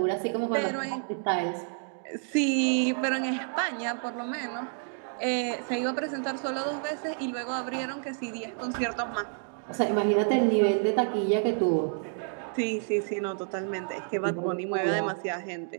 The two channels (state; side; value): silent; left; 58 dB below the other